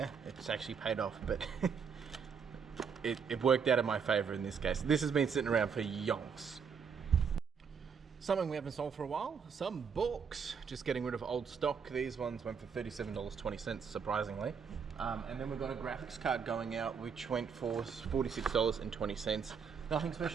it's actually paid off, but it worked out in my favor in this case. This has been sitting around for yonks. Something we haven't sold for a while, some books. Just getting rid of old stock. These ones went for $37.20, surprisingly. And then we've got a graphics card going out, which went for $46.20. Nothing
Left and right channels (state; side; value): quieter; left; 6.4 dB